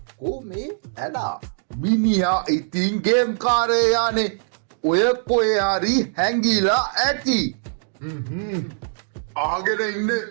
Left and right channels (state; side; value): silent; left; digital silence